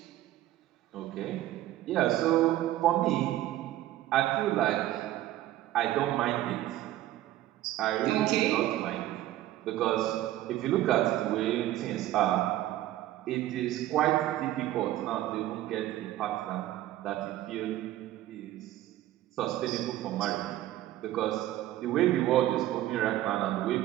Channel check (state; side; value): quieter; left; 14.3 dB